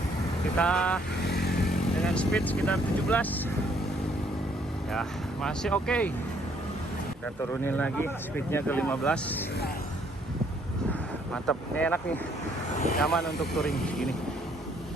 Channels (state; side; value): normal; both; correlation 0.66